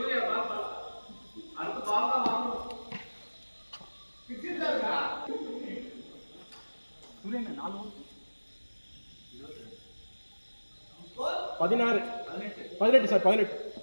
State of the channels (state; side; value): inverted; both; correlation -1.00